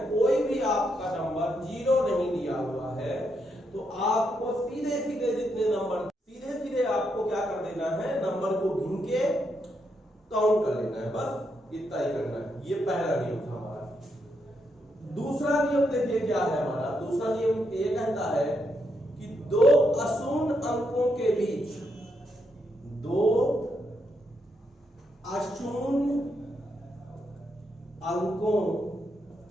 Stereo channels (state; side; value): normal; both; correlation 0.80